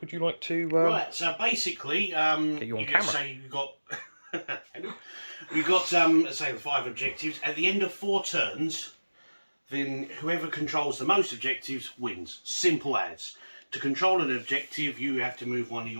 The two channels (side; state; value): both; inverted; correlation -1.00